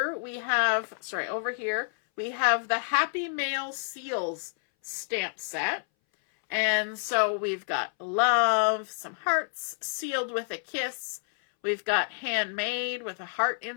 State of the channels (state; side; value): silent; right; 59 dB below the other